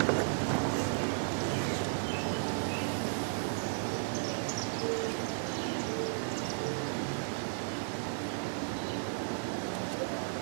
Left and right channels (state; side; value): silent; left; digital silence